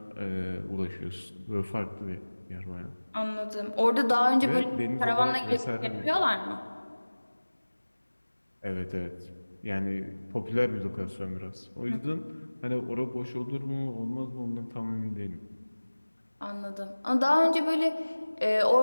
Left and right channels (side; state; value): both; inverted; correlation -1.00